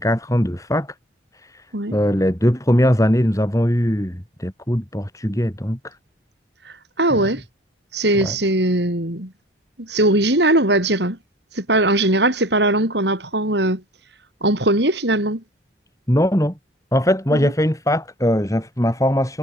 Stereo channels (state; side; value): normal; both; correlation 0.51